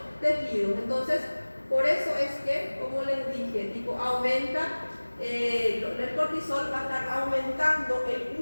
tejidos. Entonces, por eso es que, como les dije, tipo aumenta, el cortisol va a estar aumentando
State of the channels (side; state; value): both; inverted; correlation -1.00